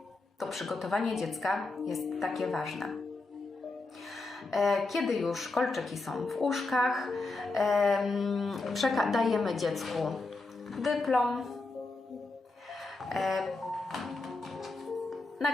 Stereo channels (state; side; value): quieter; right; 3.3 dB